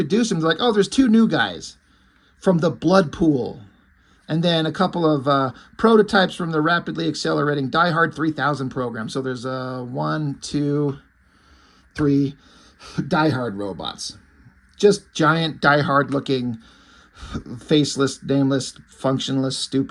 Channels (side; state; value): both; identical; correlation 1.00